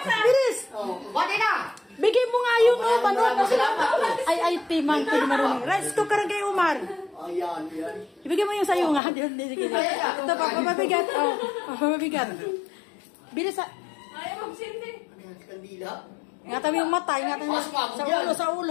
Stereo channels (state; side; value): drops out; right; at 9.0 s